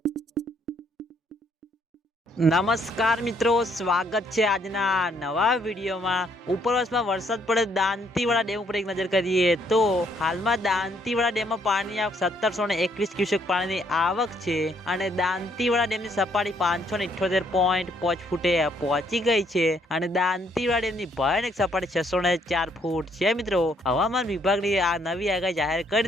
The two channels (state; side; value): normal; both; correlation 0.69